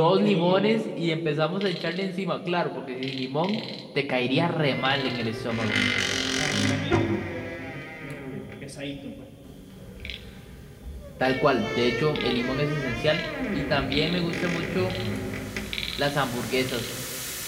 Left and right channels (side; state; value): both; identical; correlation 1.00